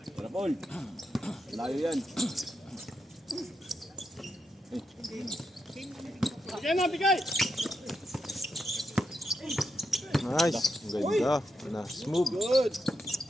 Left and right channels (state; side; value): normal; both; correlation 0.84